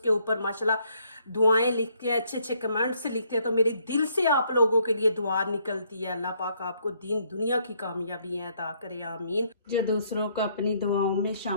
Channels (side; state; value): both; inverted; correlation -0.70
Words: ऊपर माशाल्लाह दुआएं लिखते हैं, अच्छे अच्छे कमेंट्स लिखते हैं, तो मेरे दिल से आप लोगों के लिए दुआ निकलती है। अल्लाह पाक आपको दीन दुनिया की कामयाबी अता करे, आमीन। जो दूसरों को अपनी दुआओं में